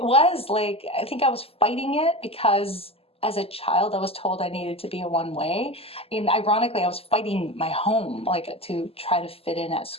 like, I think I was fighting it because as a child, I was told I needed to be a one way. And ironically, I was fighting my home, like to try to fit in at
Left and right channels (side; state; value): right; late; 0.28 ms